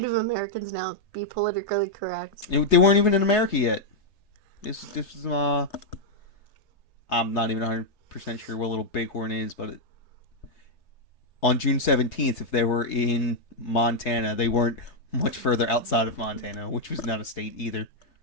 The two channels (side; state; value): right; late; 3.3 ms